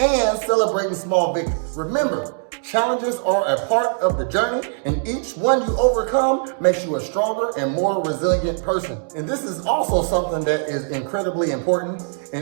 celebrating small victories. Remember, challenges are a part of the journey, and each one you overcome makes you a stronger and more resilient person. And this is also something that is incredibly important,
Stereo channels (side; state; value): left; silent; digital silence